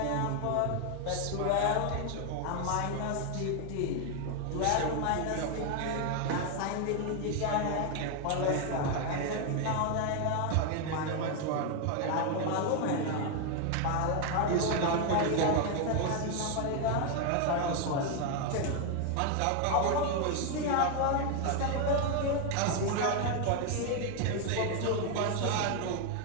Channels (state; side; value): different; both; correlation 0.01